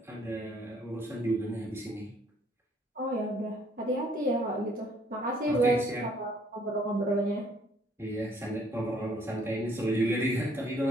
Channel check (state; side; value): normal; both; correlation 0.63